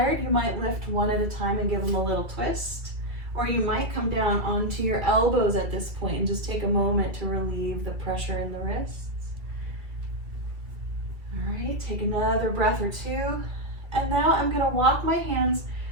you might lift one at a time and give them a little twist. Or you might come down onto your elbows at this point and just take a moment to relieve the pressure in the wrists. All right, take another breath or two. And now I'm gonna walk my hands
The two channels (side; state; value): left; late; 2.3 ms